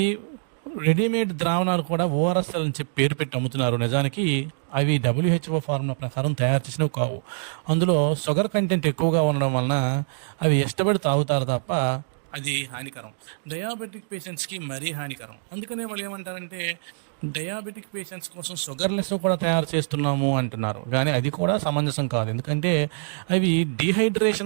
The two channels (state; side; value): silent; left; digital silence